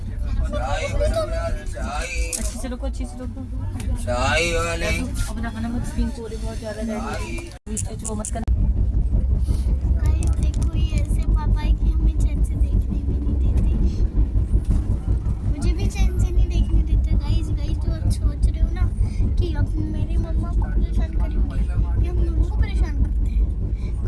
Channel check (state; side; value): identical; both; correlation 1.00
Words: अच्छे से रखो। अपना खाना मत स्पिन को बहुत ज्यादा जाएगी। वो मत करना। गाइस देखो, ये ऐसे पापा है कि हमें चैन से देखने भी नहीं देते। मुझे भी चैन से नहीं देखने देते। गाइस जो आप सोच रहे हो ना कि अब मेरी मम्मा को परेशान करेंगे, ये हम लोगों को परेशान करते हैं।